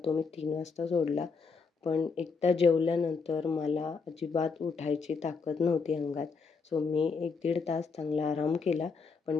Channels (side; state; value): right; quieter; 4.9 dB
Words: मी 3 वाजता सोडला. पण एकदा जेवल्यानंतर मला अजिबात उठायची ताकद नव्हती अंगात. सो मी 1-1.5 तास चांगला आराम केला, पण